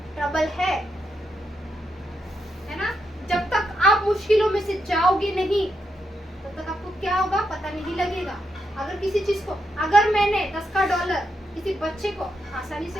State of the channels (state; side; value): normal; both; correlation 0.82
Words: ट्रबल है ना? जब तक आप मुश्किलों में से जाओगे नहीं, तब तक आपको क्या होगा पता नहीं लगेगा। अगर किसी चीज को, अगर मैंने 10 का डॉलर किसी बच्चे को आसानी